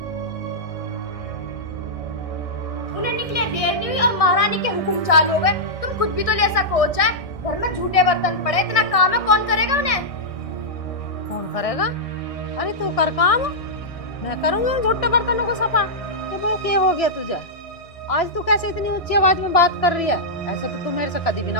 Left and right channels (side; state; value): right; late; 1.6 ms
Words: उन्हें निकले देर नहीं हुई और महारानी के हुक्म चालू हो गए। तुम खुद भी तो ले सको चाहे, घर में झूठे बर्तन पड़े, इतना काम है, कौन करेगा उन्हें? कौन करेगा? अरे तू कर काम, मैं करूंगी उन झूठे बर्तनों को सफा। ये बहू क्या हो गया तुझे? आज तू कैसे इतनी ऊंची आवाज में बात कर रही है? ऐसे तो तू मेरे से कभी भी